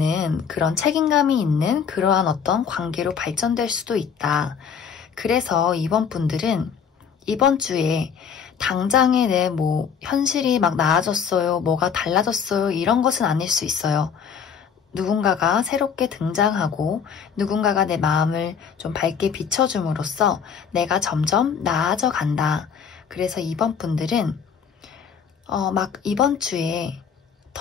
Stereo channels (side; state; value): right; quieter; 7.0 dB